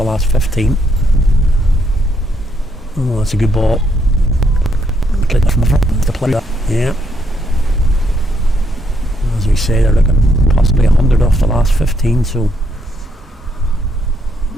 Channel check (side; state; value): both; normal; correlation 0.76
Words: last 15. Oh, that's a good ball. Yeah. As we say, they're looking possibly 100 off the last 15, so.